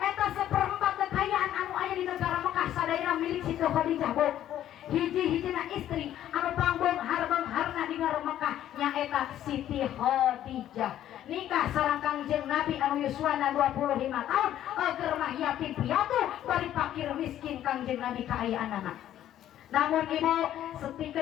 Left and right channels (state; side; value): quieter; right; 11.8 dB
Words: seperempat kekayaan anu aya di negara Mekah sadayana milik Siti Khadijah Bu. Hiji-hijina istri anu pangbeunghar-beungharna di negara Mekah nyaeta Siti Khadijah. Nikah sareng Kangjeng Nabi anu yuswana 25 tahun, keur mah yatim piatu bari fakir miskin Kangjeng Nabi kaayaanana. Namun ibu,